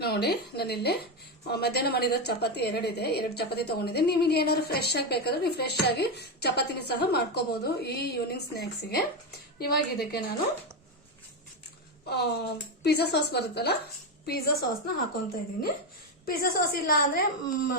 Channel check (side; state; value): both; normal; correlation 0.11